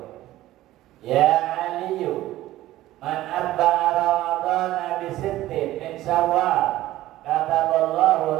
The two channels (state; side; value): quieter; left; 15.4 dB